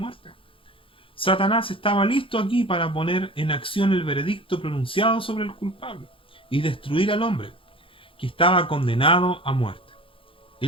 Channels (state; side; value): late; right; 0.26 ms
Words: Satanás estaba listo aquí para poner en acción el veredicto pronunciado sobre el culpable y destruir al hombre que estaba condenado a muerte.